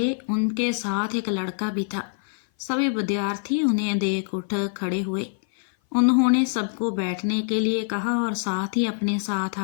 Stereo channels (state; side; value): silent; right; 57 dB below the other